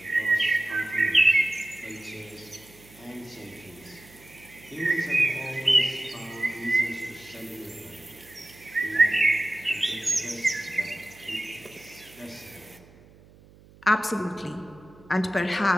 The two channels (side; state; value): right; noise; hum, 25 dB below the sound